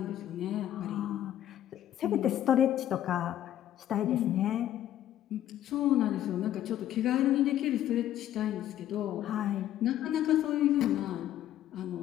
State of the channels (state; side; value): quieter; right; 12.0 dB